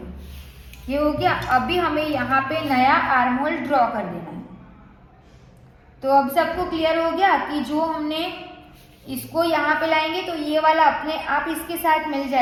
ये हो गया। अभी हमें यहाँ पे नया आर्म होल ड्रॉ कर देना है। तो अब सबको क्लियर हो गया कि जो हमने इसको यहाँ पे लाएंगे तो ये वाला अपने आप इसके साथ मिल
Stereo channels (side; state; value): both; identical; correlation 1.00